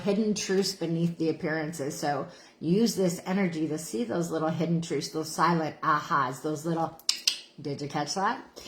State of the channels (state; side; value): identical; both; correlation 1.00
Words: truths beneath the appearances. So use this energy to see those little hidden truths, those silent ahas, those little, did you catch that?